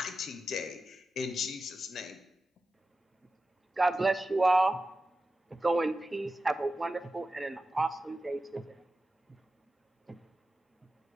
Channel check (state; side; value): normal; both; correlation 0.93